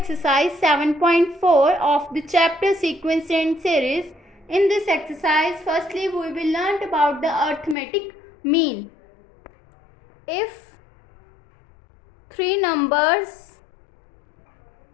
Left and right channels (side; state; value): right; drops out; at 7.8 s